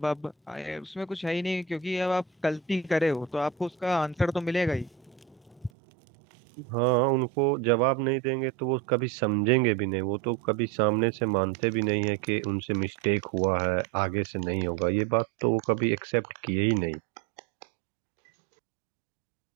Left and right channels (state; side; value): drops out; left; at 5.7 s